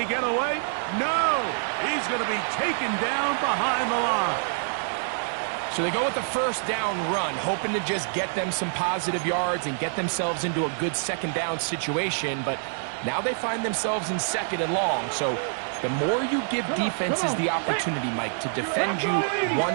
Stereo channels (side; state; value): left; silent; digital silence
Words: get away? No! He's going to be taken down behind the line. So they go with the 1st down run, hoping to just get them some positive yards and get themselves into a good 2nd down situation, but now they find themselves in 2nd and long. So the more you give defenses the opportunity, Mike, to defend you